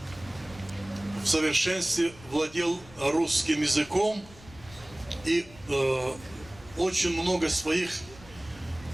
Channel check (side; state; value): left; noise; rumble, 21 dB below the sound